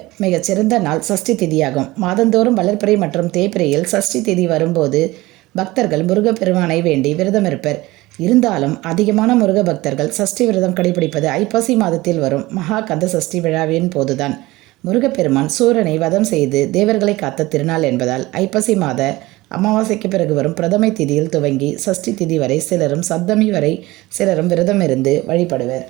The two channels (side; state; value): left; quieter; 19.6 dB